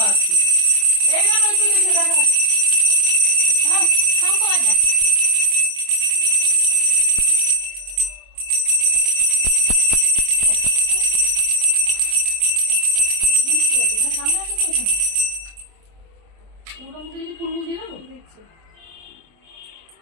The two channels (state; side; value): late; left; 24 ms